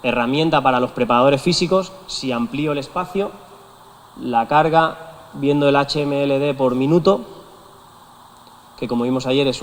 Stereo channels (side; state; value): both; identical; correlation 1.00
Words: herramienta para los preparadores físicos, si amplío el espacio, la carga, viendo el HMLD por minuto, que como vimos ayer es